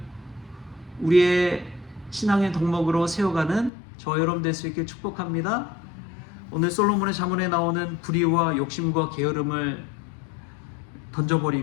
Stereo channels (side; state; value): right; drops out; at 3.7 s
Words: 우리의 신앙의 덕목으로 세워가는 저 여러분 될 수 있게 축복합니다. 오늘 솔로몬의 잠언에 나오는 불의와 욕심과 게으름을